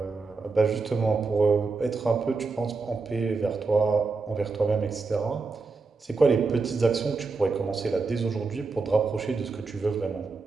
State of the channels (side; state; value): left; quieter; 4.2 dB